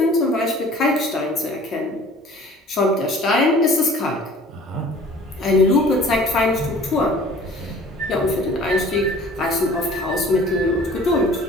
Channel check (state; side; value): normal; both; correlation 0.48